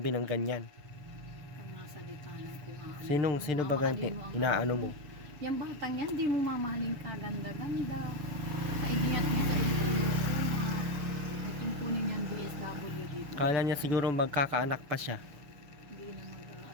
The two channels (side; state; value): left; late; 6.8 ms